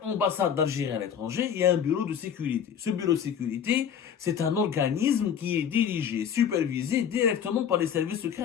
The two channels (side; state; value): right; quieter; 8.2 dB